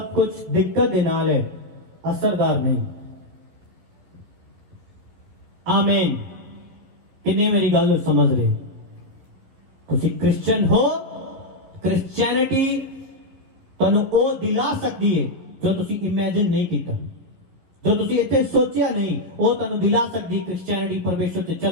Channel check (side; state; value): left; late; 11 ms